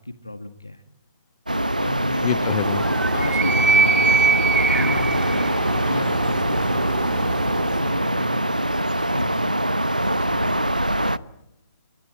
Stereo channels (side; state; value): both; inverted; correlation -0.38